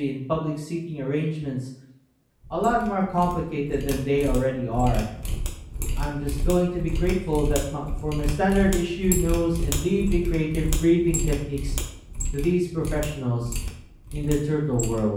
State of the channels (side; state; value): both; identical; correlation 1.00